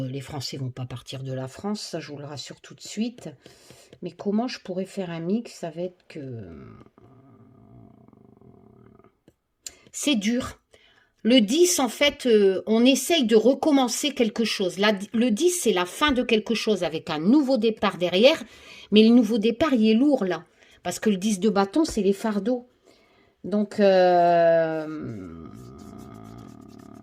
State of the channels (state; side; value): identical; both; correlation 1.00